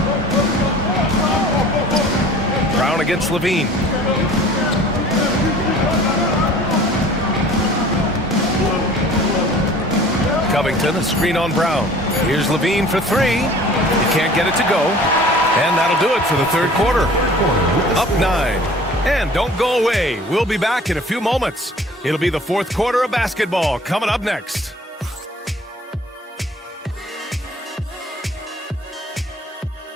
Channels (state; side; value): normal; both; correlation 0.48